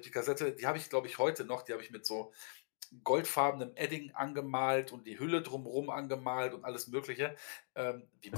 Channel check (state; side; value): silent; right; digital silence